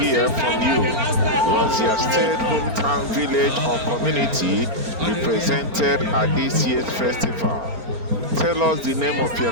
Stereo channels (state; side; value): late; left; 4.4 ms